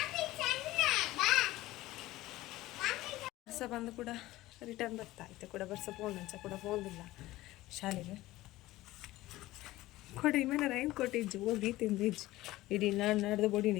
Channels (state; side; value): quieter; right; 17.3 dB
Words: ಬರ್ಸ ಬಂದು ಕೂಡ ರಿಟರ್ನ್ ಬರ್ತಾ ಇತ್ತು ಕೂಡ ಬರ್ಸ ಫೋನ್ ಅಂಚ ಕೂಡ ಫೋನ್ ಇಲ್ಲ ಶಾಲೆಗೆ ಕೊಡಿ ಮೇಲೆ ರೈನ್ ಕೋಟ್ ಇಜ್ಜು ಹೋಗಿ ತಿಂದಿಜ್ಜು ಇಡೀ ನಾಡ್ದು ಬೊಡಿ